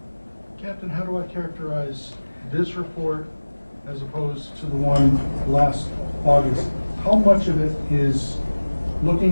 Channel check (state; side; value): inverted; both; correlation -1.00